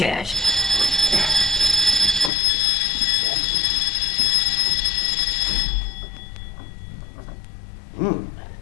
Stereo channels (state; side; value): drops out; right; at 2.3 s